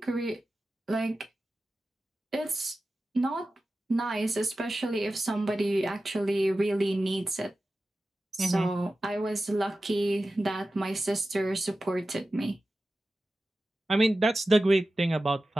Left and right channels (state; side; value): normal; both; correlation 0.94